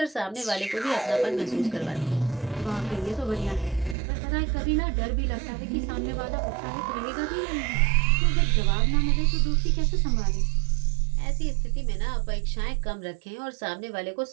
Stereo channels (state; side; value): drops out; left; at 4.0 s